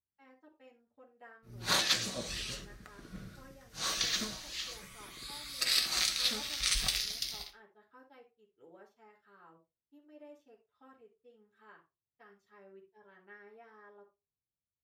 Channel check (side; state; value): both; identical; correlation 1.00